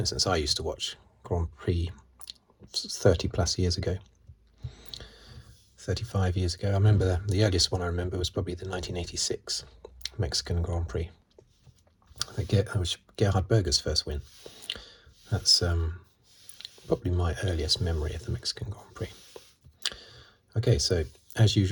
I used to watch Grand Prix 30 plus years ago, 35 years ago. I remember the earliest one I remember was probably the 1986 Mexican Grand Prix. That was Gerhard Berger's first win. That's probably my earliest memory of the Mexican Grand Prix. Okay, so as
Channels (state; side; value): identical; both; correlation 1.00